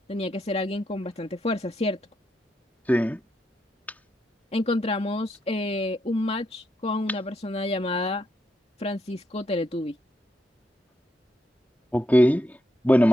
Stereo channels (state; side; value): normal; both; correlation 0.80